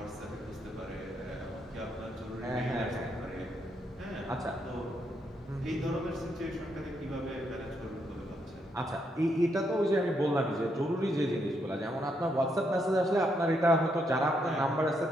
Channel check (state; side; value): normal; both; correlation 0.77